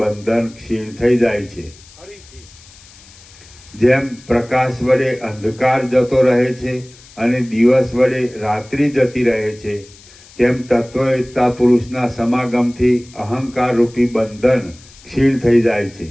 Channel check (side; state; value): left; noise; hiss, 23 dB below the sound